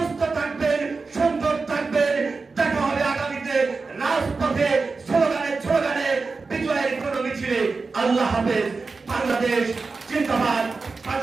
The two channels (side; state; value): left; quieter; 4.2 dB